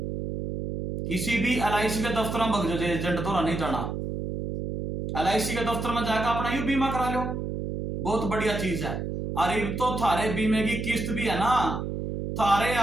किसी भी LIC के दफ्तर में भग एजेंट तो नहीं जाना। LIC के दफ्तर में जाकर अपना यू बीमा करा लो, बहुत बढ़िया चीज है। और अब तो थारे बीमे की किस्त भी है ना, थारे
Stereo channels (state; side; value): noise; right; hum, 4 dB below the sound